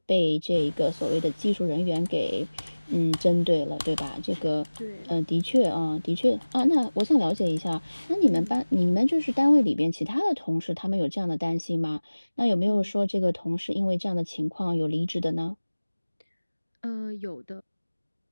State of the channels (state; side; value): inverted; both; correlation -1.00